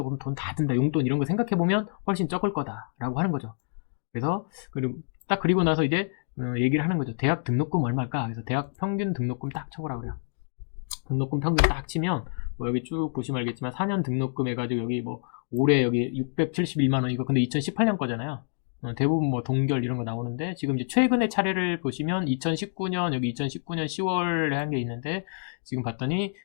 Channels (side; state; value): right; silent; digital silence